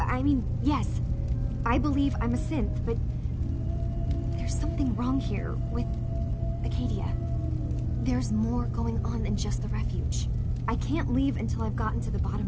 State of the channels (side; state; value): both; identical; correlation 1.00